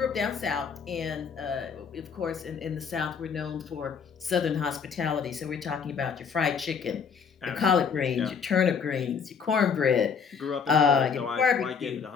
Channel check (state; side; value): quieter; right; 6.2 dB